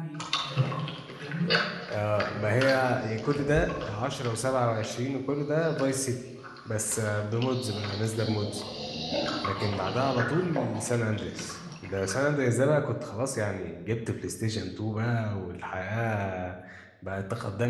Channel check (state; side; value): identical; both; correlation 1.00